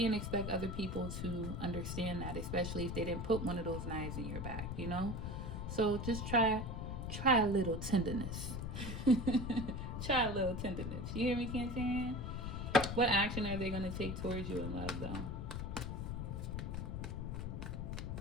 expect other people to understand that, especially if they didn't put one of those knives in your back, you know? So just try a little tenderness. Try a little tenderness. You hear me, Cancerian? What action are they going to take towards you in love, though?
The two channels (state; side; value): noise; left; rumble, 4 dB below the sound